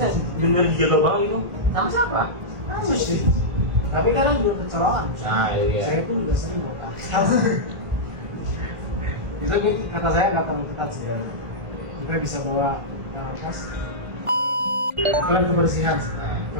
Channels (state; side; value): late; left; 1.5 ms